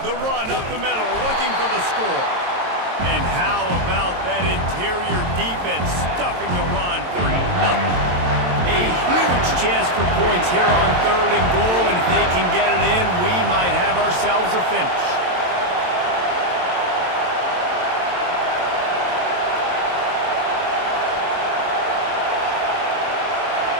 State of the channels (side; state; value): left; late; 22 ms